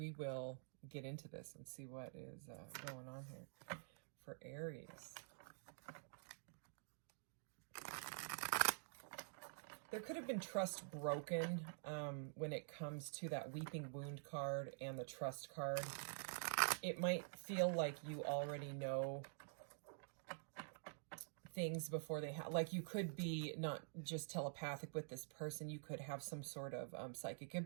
will get into this and see what is going on here for Aries. There could have been trust broken when it comes to that weeping wound card and the trust card. It might feel like you already know things before they have, like, you could be not just telepathic with this person, you could have some sort of psychic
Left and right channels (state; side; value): silent; left; digital silence